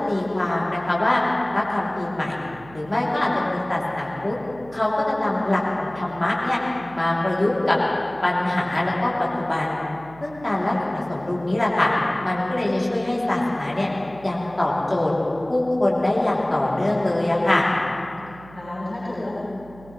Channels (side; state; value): right; noise; hum, 21 dB below the sound